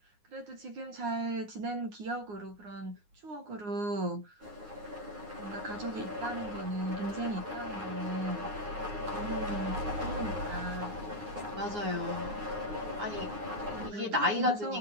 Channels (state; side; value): late; left; 9.7 ms